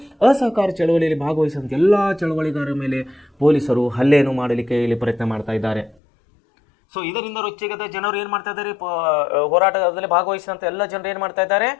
ಅಸಹಕಾರ ಚಳವಳಿಯಲ್ಲಿ ಭಾಗವಹಿಸಿದಂಥ ಎಲ್ಲ ಚಳವಳಿಗಾರರ ಮೇಲೆ ಪೊಲೀಸರು ಹಲ್ಲೆಯನ್ನು ಮಾಡಲಿಕ್ಕೆ ಇಲ್ಲಿ ಪ್ರಯತ್ನ ಮಾಡ್ತಾ ಇದ್ದಾರೆ. ಸೊ ಇದರಿಂದ ರೊಚ್ಚಿಗೆದ ಜನರು ಏನು ಮಾಡ್ತಾ ಇದ್ದಾರೆ? ಹೋರಾಟದಲ್ಲಿ ಭಾಗವಹಿಸಿದಂಥ ಎಲ್ಲ ಜನರು ಏನು ಮಾಡ್ತಾ ಇದ್ದಾರೆ?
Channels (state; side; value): drops out; right; at 6.0 s